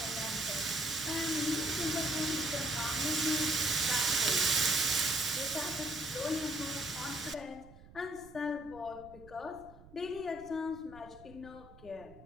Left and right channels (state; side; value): noise; right; rumble, 21 dB below the sound